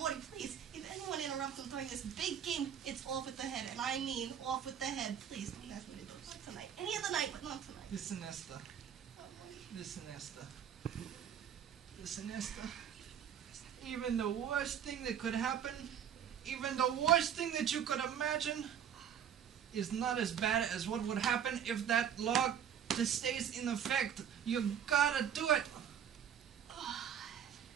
please. If anyone interrupts him during this big game, it's off with the head. And I mean off with the head. Please don't ask me to do it. Not tonight. Any other night, but not tonight. Listen, Esther. Oh, Morty. Listen, Esther. Even the worst thing that could happen, even the worst thing that you could imagine, is not as bad as what would happen if that law just stays in effect. You gotta do it.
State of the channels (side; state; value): left; quieter; 8.8 dB